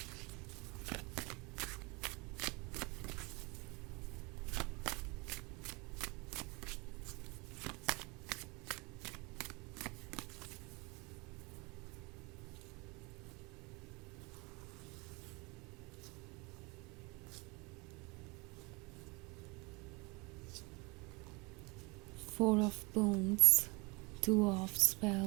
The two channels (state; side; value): quieter; left; 27.4 dB